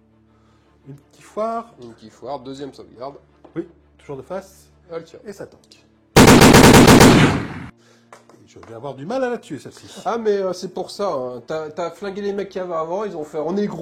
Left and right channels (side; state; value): both; identical; correlation 1.00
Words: Une petite foire. Une petite foire, deuxième sauvegarde. Oui, toujours de face. Elle tire. Et ça tank. Je vais avoir du mal à la tuer celle-ci. Ah mais c'est pour ça, hein. T'as flingué les mecs qui avaient avant, ils ont fait on est